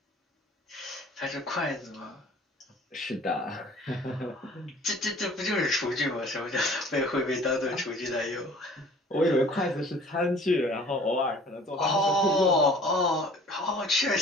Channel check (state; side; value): normal; both; correlation 0.50